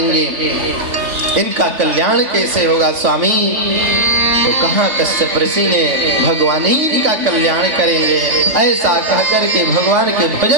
इनका कल्याण कैसे होगा स्वामी। तो कहाँ कश्यप ऋषि ने भगवान ही का कल्याण करेंगे, ऐसा कह करके भगवान के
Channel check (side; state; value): left; late; 3.5 ms